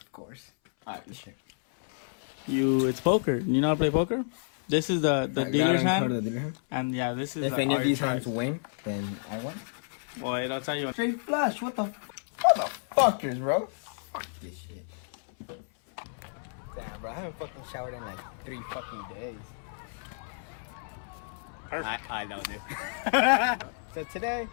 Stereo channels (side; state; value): right; silent; 58 dB below the other